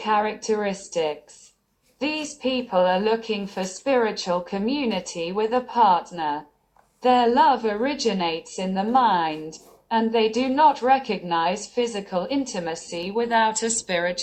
These people are looking for spiritual community with a partner. Their love originates in the mind, and they do not recognize physical intimacy without a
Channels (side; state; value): both; identical; correlation 1.00